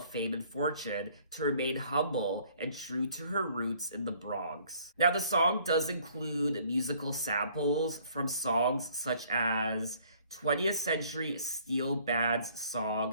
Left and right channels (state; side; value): inverted; both; correlation -0.59